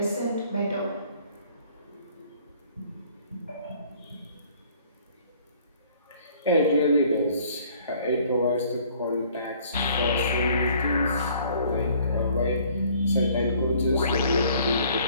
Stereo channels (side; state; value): both; inverted; correlation -0.58